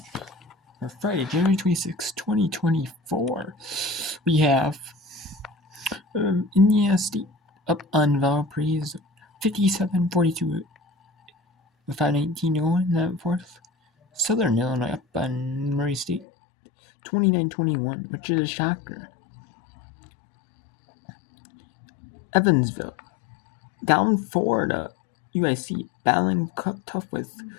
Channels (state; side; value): drops out; right; at 16.2 s